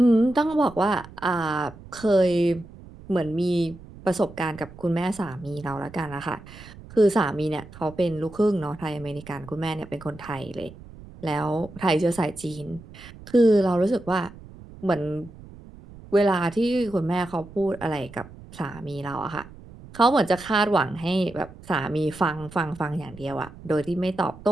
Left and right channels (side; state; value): right; noise; rumble, 18 dB below the sound